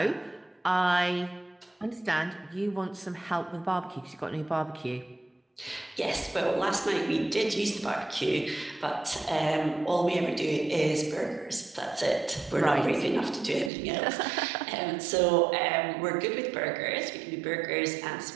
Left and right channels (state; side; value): drops out; left; at 13.7 s